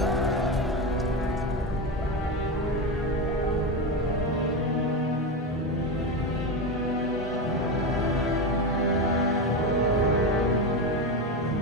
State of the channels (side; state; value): both; normal; correlation 0.16